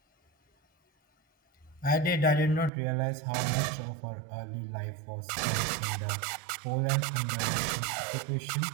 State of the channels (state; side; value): drops out; left; at 2.7 s